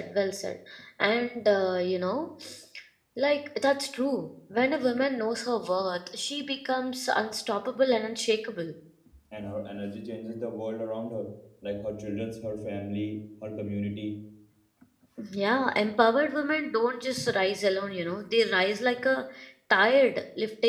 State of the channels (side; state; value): both; identical; correlation 1.00